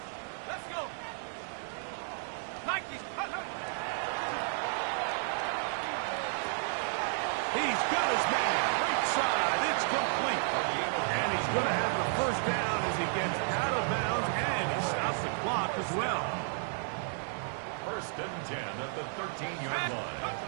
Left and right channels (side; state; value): left; silent; 56 dB below the other